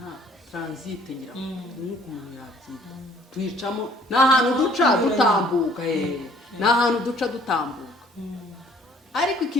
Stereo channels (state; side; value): normal; both; correlation 0.57